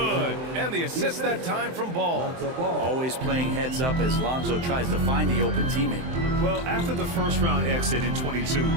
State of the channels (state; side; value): late; left; 23 ms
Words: And the assist that time from Ball. Always playing heads up as Lonzo tries to find the open teammate. Well, after the first round exit in 22,